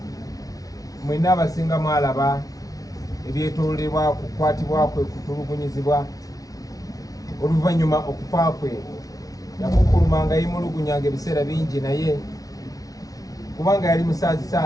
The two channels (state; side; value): late; right; 0.17 ms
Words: mwena abasinga mwalaba ebyetoolebwa kukwatibwa kwe, kutulugunyizibwa oluvannyuma okufa kwe. Yakukulumanga yimulugunyanga ebiseera bingi, naye kubanga yali musaazi